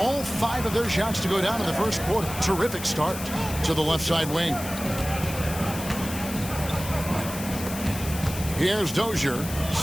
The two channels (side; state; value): left; noise; hiss, 10 dB below the sound